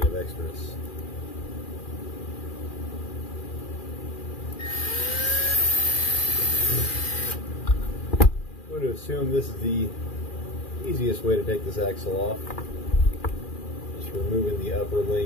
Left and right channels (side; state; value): right; late; 2.4 ms